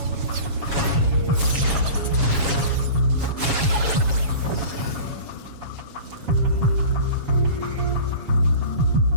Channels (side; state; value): left; late; 7.2 ms